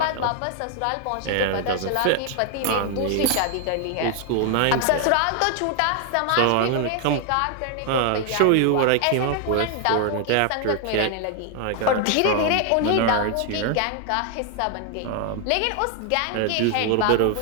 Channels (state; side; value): different; both; correlation 0.00